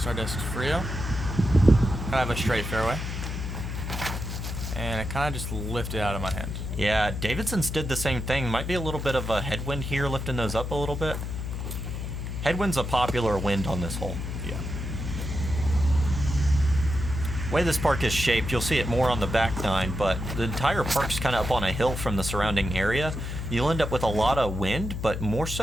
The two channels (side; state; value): left; noise; hum, 5 dB below the sound